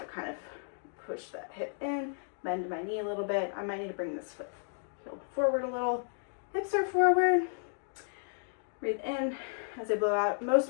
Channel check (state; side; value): silent; right; digital silence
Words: kind of push that hip in, bend my knee a little bit. I might need to bring this foot heel forward a little. Hips are forward. Breathe in as I blow out. Most of